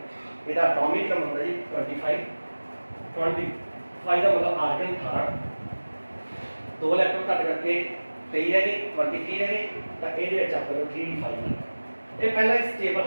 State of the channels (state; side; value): inverted; both; correlation -1.00